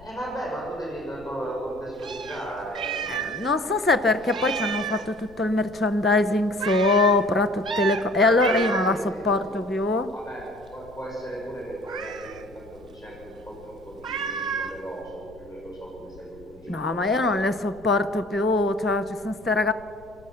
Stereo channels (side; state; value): left; noise; rumble, 23 dB below the sound